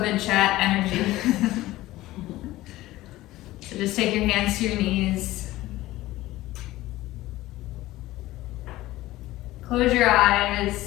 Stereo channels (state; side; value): quieter; right; 16.9 dB